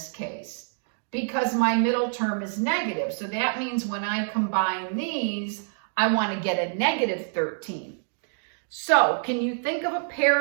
case? Because my middle term is negative. So that means when I combine these, I want to get a negative 13. So can you think of a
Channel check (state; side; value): silent; left; digital silence